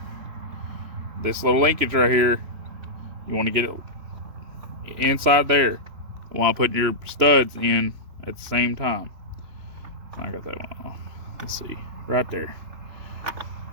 This little linkage right here, you want to get it inside there while putting your studs in at the same time. I got that one off. Let's see, right there.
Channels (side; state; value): left; late; 3.0 ms